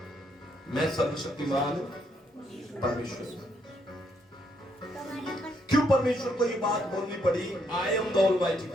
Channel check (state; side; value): normal; both; correlation 0.74